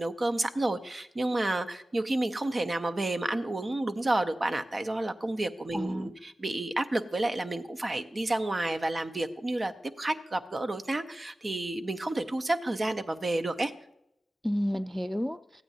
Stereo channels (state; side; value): normal; both; correlation 0.96